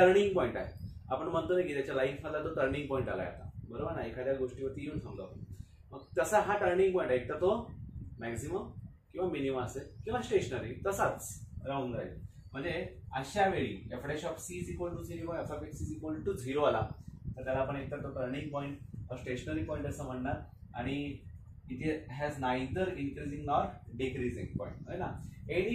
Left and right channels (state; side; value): identical; both; correlation 1.00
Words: पॉइंट आहे. आपण म्हणतो ना की त्याच्या लाईफ मधला तो टर्निंग पॉइंट आलाय आता, बरोबर ना, एखाद्या गोष्टीवरती येऊन थांबलो आपण. मग तसा हा टर्निंग पॉइंट आहे, तर तो मॅक्झिमम किंवा मिनिमम असेल किंवा स्टेशनरी तसाच राहून जाईल. म्हणजे अशा वेळी f dash of c is equal to 0 f of x is equal to 0 आला, तर त्याला आपण एकतर तो टर्निंग पॉइंट स्टेशनरी पॉइंट असं म्हणणार, आणि इथे has neither increasing nor decreasing point आहे ना.